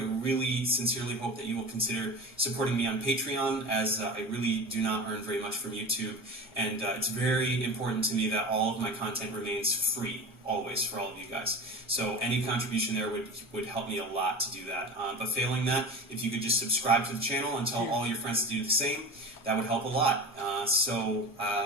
really sincerely hope that you will consider supporting me on Patreon, as I really do not earn very much from YouTube. And it's very important to me that all of my content remains free, always, for all of you guys. So any contribution there would help me a lot to do that. But failing that, if you could just subscribe to the channel and tell all your friends to do the same, that would help a lot. So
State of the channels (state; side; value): normal; both; correlation 0.31